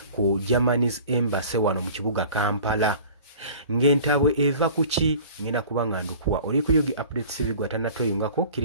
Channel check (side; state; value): both; inverted; correlation -0.44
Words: ku Germany's Embassy wano mu kibuga Kampala. Ng'entabwe eva kuki ngenda kuba nga ndukuwa oli ku Yugi Update TV gwatannatweyungako